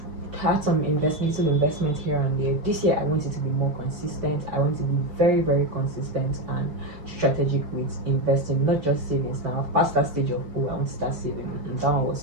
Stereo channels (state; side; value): late; left; 4.6 ms